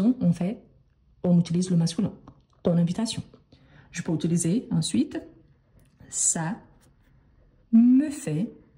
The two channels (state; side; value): identical; both; correlation 1.00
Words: on utilise le masculin. Ton invitation. Je peux utiliser ensuite ça me fait.